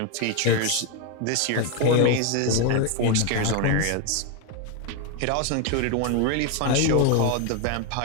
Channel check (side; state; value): both; different; correlation 0.01